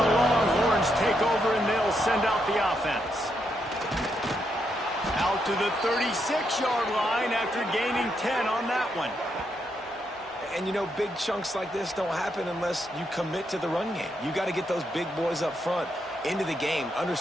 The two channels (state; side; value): normal; both; correlation 0.80